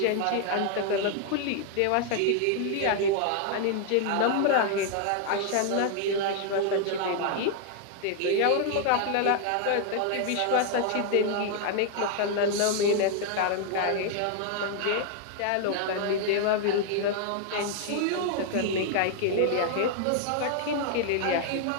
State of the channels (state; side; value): different; both; correlation 0.00